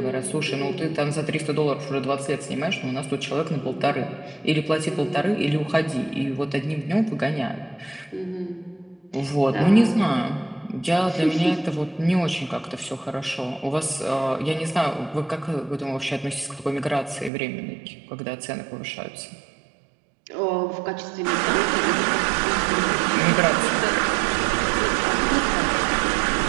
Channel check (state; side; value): drops out; left; at 17.3 s